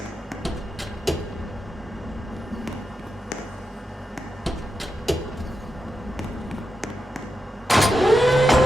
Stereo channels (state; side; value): normal; both; correlation 0.88